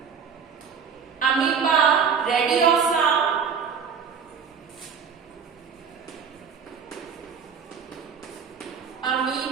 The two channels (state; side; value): quieter; left; 6.6 dB